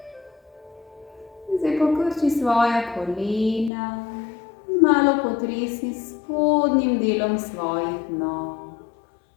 Zdaj pokrči svoja kolena. Malo potresi spodnjim delom svojih nog.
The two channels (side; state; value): right; drops out; at 3.7 s